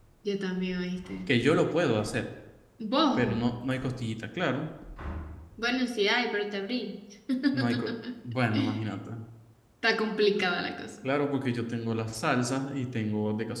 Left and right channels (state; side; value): identical; both; correlation 1.00